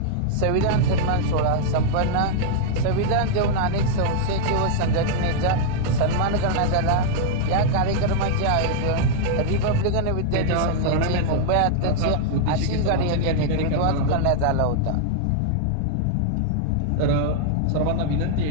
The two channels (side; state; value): both; different; correlation -0.01